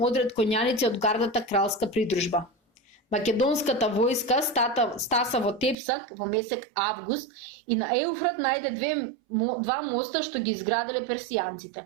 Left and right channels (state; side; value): drops out; left; at 5.8 s